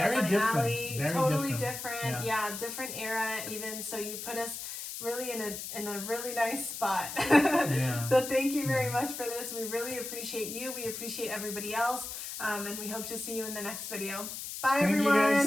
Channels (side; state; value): left; noise; hiss, 7 dB below the sound